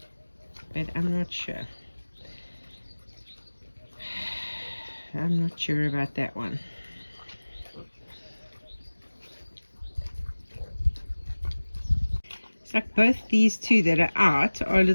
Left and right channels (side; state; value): both; inverted; correlation -1.00